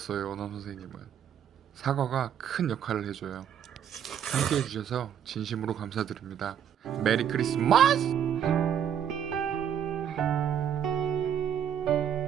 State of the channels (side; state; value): left; quieter; 9.0 dB